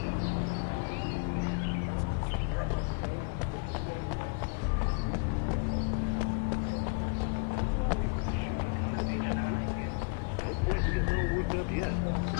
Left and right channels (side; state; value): right; quieter; 33.8 dB